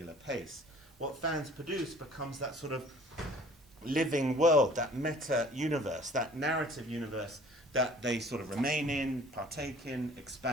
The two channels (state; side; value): normal; both; correlation 0.51